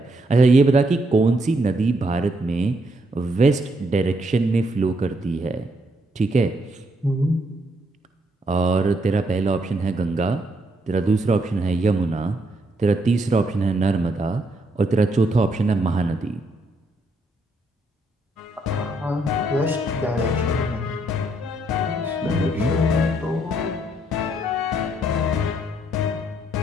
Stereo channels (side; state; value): both; normal; correlation 0.74